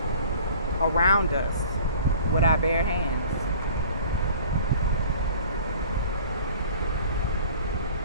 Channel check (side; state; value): both; inverted; correlation -0.47